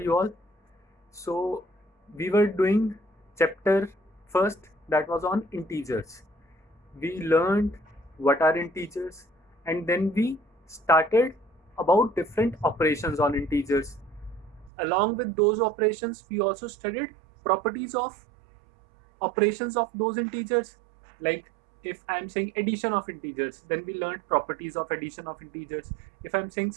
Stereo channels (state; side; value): drops out; left; at 14.7 s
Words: all? So we were doing chapter first that was on integers. We learned what are integers and then we started about different operations on integers. Along with those operations, we also studied properties of operations of those integers. Like if I'm saying addition of integers, then we learned properties of addition of integers. If I'm saying